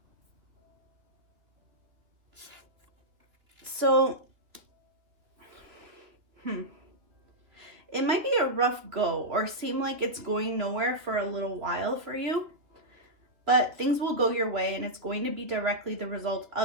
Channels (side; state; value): left; late; 2.6 ms